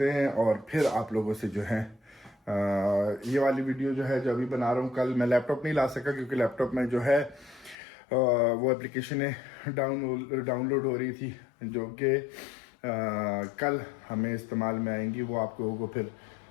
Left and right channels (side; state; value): right; drops out; at 7.8 s